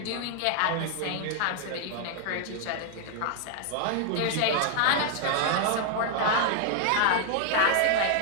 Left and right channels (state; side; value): different; both; correlation 0.00